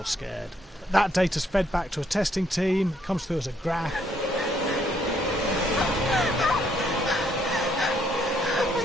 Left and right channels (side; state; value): both; normal; correlation 0.70